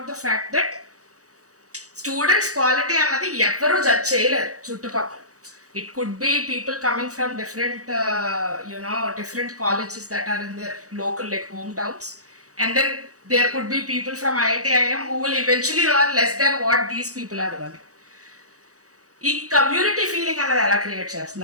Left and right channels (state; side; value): late; left; 0.66 ms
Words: the fact that students quality అన్నది ఎవరు judge చేయలేరు చుట్టుపక్కల. It could be people coming from different different colleges that are in their local like hometowns, and then there could be people from IIT IIM who will eventually earn less than what these people are earning. ఈ community feeling అనేది ఎలా create